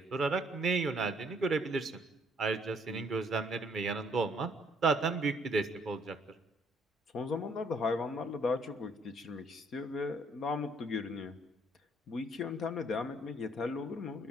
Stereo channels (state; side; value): normal; both; correlation 0.65